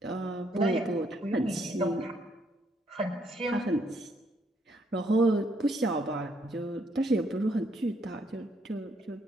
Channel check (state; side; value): normal; both; correlation 0.71